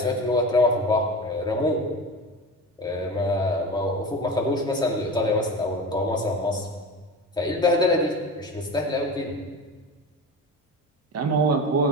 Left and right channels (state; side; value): normal; both; correlation 0.29